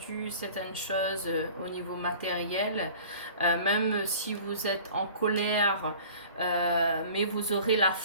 certaines choses au niveau matériel, même si vous êtes en colère, mais vous aurez la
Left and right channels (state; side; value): inverted; both; correlation -0.45